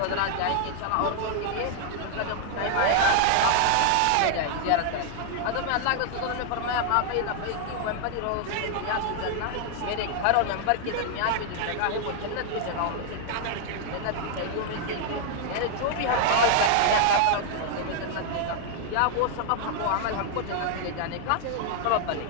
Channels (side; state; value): both; different; correlation 0.00